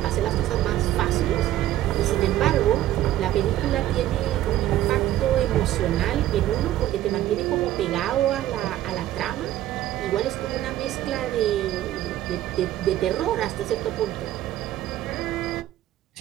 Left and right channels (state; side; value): quieter; left; 13.6 dB